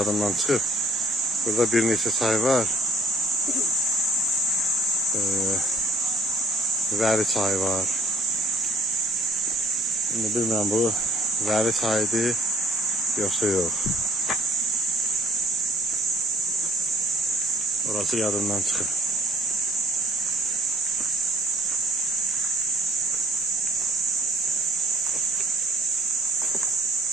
çıxıb. Burada bir neçə çay var. Vəli çayı var. Şimdi bilmirəm bu vəli çayıdır yoxsa yox. Orası yadımdan çıxıb.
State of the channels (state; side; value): normal; both; correlation 0.58